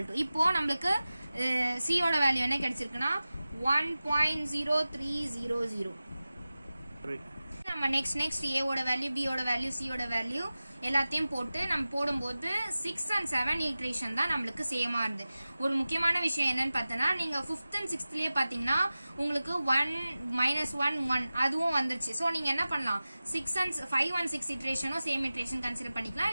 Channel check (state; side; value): inverted; both; correlation -0.96